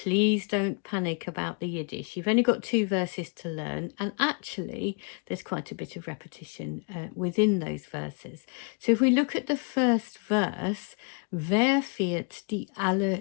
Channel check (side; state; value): right; quieter; 38.3 dB